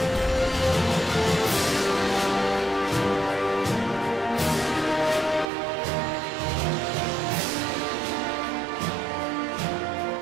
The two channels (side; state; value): left; drops out; at 5.5 s